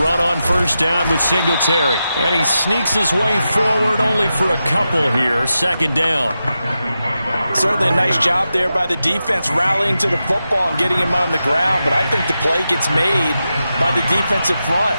on first down with Singletary. And he sneaks his way forward only for a couple here. Second down. Certainly a nice job there by the defense rallying to the football and getting him on the ground. But I think the play gets made by the defensive front.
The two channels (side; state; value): both; inverted; correlation -0.90